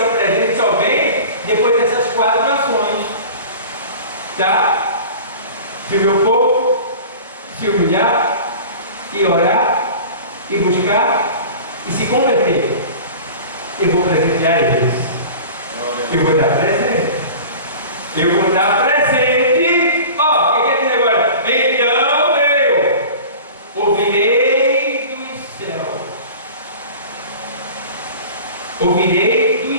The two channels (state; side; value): inverted; both; correlation -0.39